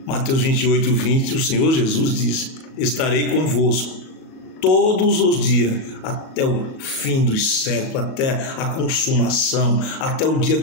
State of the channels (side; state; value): right; late; 38 ms